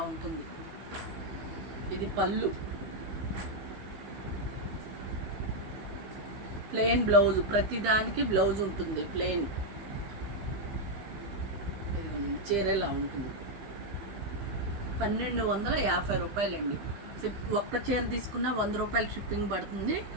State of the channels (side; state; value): left; late; 15 ms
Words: ఉంటుంది. ఇది పళ్ళు, ప్లెయిన్ బ్లౌజ్, ప్రతిదానికి బ్లౌజ్ ఉంటుంది ప్లెయిన్. చీర ఇలా ఉంటుంది. 1250 రూపాయలండి. ఒక్క చీర తీసుకున్న 100 రూపాయలు షిప్పింగ్ పడుతుంది.